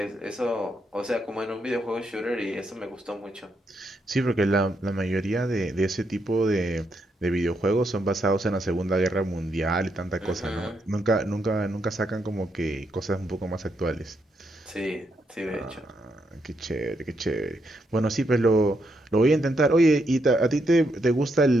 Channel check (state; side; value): normal; both; correlation 0.79